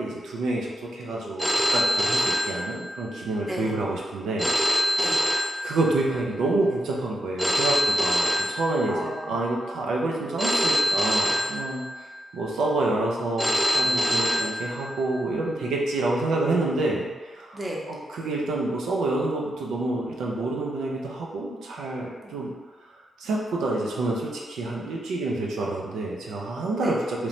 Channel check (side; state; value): both; normal; correlation 0.83